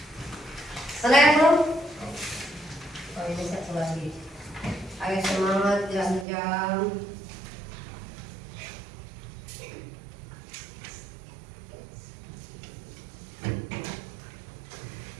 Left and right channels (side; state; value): left; drops out; at 6.2 s